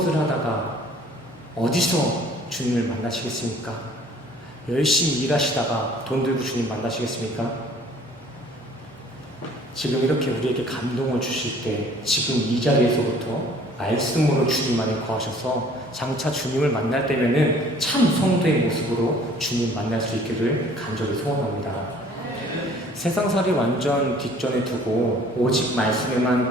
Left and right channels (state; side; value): normal; both; correlation 0.54